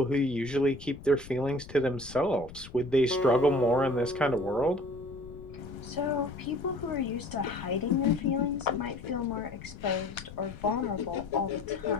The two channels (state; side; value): noise; left; rumble, 16 dB below the sound